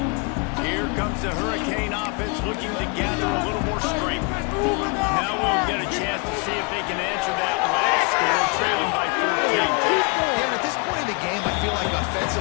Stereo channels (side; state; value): right; quieter; 32.6 dB